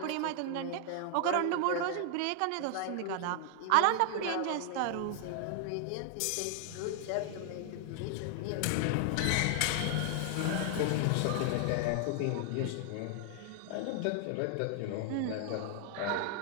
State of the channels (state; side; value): different; both; correlation 0.00